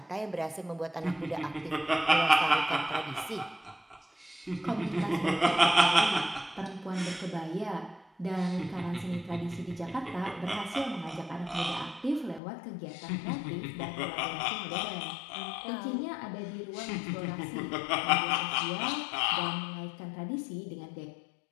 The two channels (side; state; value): right; drops out; at 12.4 s